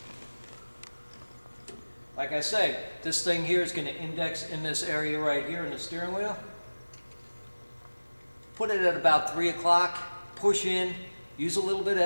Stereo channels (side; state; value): both; inverted; correlation -1.00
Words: Like I say, this thing here is going to index in this area right here in the steering wheel. Put it at about 3 o'clock, push in, use a little bit of